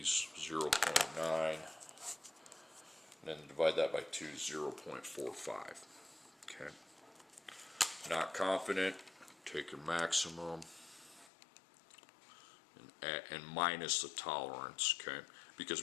0.9, and then divide that by 2, 0.45, okay. Not confident, take your maximum and minus the tolerance, okay?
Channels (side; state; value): right; drops out; at 11.3 s